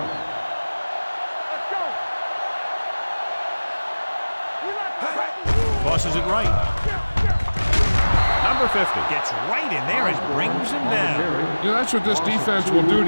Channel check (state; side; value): inverted; both; correlation -1.00